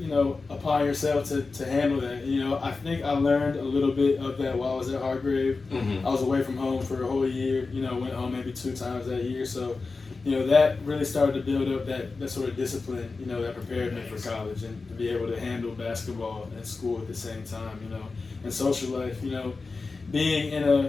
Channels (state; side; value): quieter; right; 4.1 dB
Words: know, upon yourself to handle that. You know, I think I learned a little bit of that while I was at Hargrave. I was away from home for a whole year. You know, went home maybe 2 times that year. So, you know, that really started to build up that sort of discipline, you know, that prepared me for college and to be able to handle basketball and school at the same time, you know, and social life, you know. being in